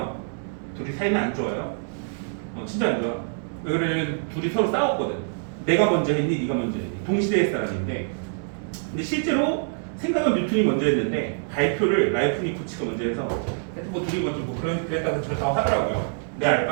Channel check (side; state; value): left; silent; digital silence